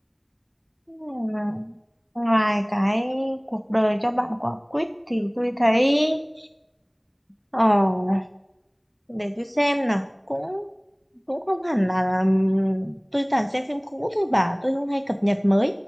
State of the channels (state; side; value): identical; both; correlation 1.00